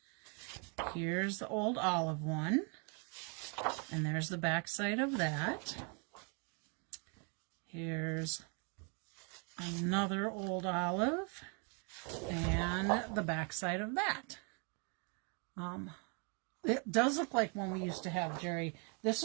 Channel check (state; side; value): quieter; left; 36.5 dB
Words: Here's the Old Olive one, and there's the back side of that. Here's another Old Olive, and the back side of that. It does look like one we used to have, Jerry. This